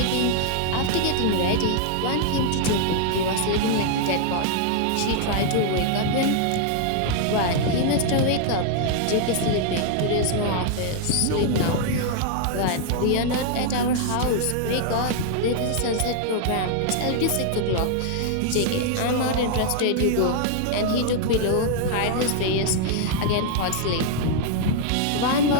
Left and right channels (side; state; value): both; different; correlation 0.00